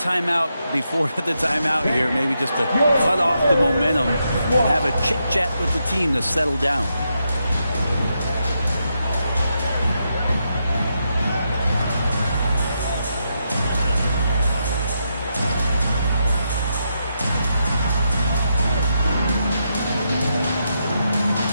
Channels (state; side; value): inverted; both; correlation -0.83